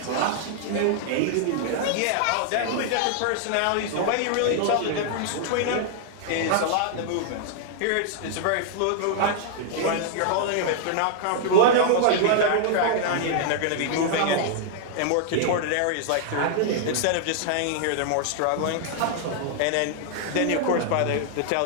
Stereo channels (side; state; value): both; different; correlation -0.01